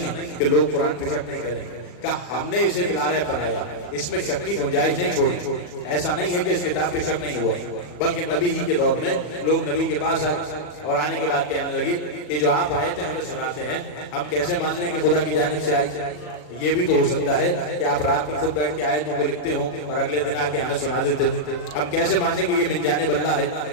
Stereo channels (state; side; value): late; right; 40 ms